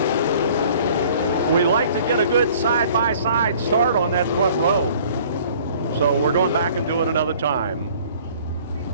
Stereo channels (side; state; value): both; inverted; correlation -0.53